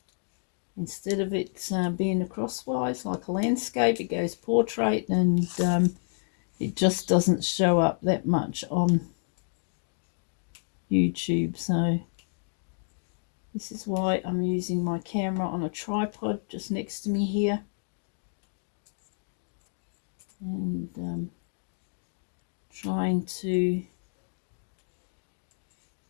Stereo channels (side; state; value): right; silent; digital silence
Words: Instead of it being a crosswise like a landscape, it goes portrait, and it just doesn't show up that much on YouTube. So this is why I'm using my camera on a tripod just next to me here, and trying to